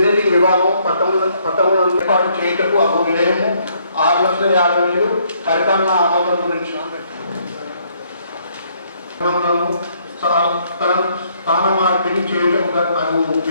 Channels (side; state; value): both; inverted; correlation -0.68